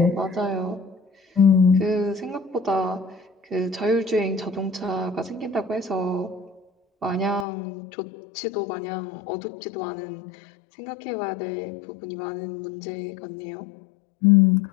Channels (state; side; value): drops out; right; at 7.5 s